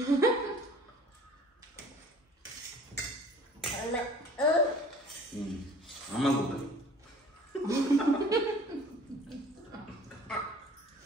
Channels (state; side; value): normal; both; correlation 0.48